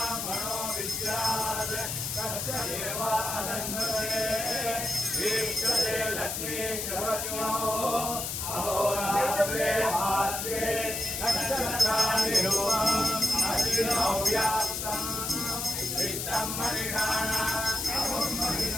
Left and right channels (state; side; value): noise; left; hiss, 3 dB below the sound